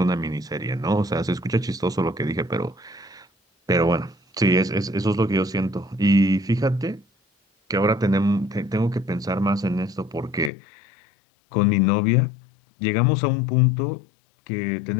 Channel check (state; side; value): drops out; right; at 10.5 s